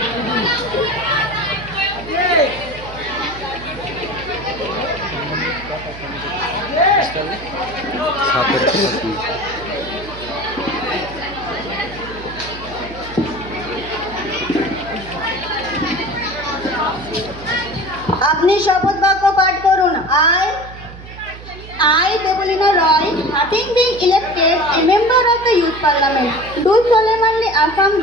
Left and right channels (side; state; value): right; noise; hum, 15 dB below the sound